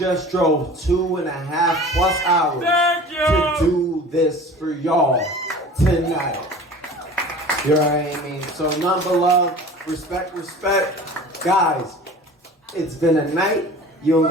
drove 2.5+ hours to do this for y'all tonight. You know what I mean? So none but love, respect. Guys, it's been a night. You don't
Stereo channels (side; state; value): both; normal; correlation 0.41